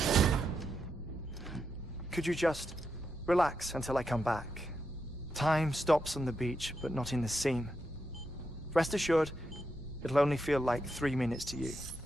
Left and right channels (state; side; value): noise; left; hum, 19 dB below the sound